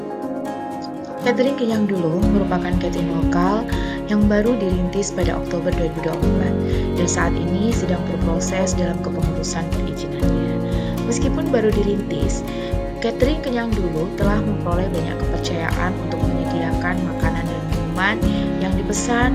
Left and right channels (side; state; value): both; identical; correlation 1.00